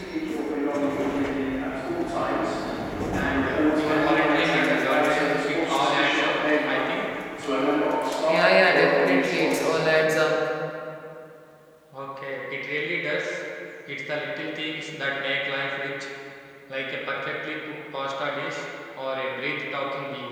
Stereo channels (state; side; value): identical; both; correlation 1.00